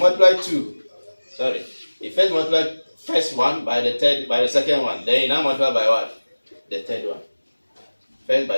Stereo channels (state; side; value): inverted; both; correlation -1.00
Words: 2. Sorry. You first multiply first one by the second one. Then you now multiply by what? The third one. First